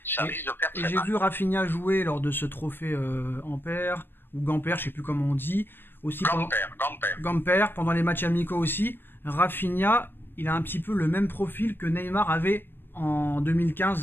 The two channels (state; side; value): late; right; 0.098 ms